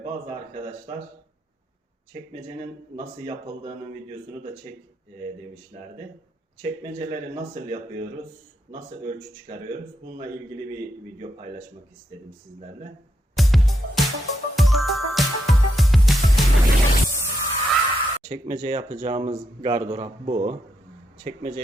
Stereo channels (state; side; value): normal; both; correlation 0.81